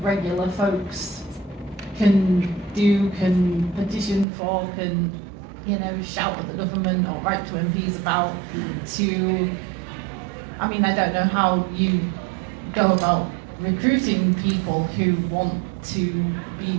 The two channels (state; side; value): drops out; left; at 4.2 s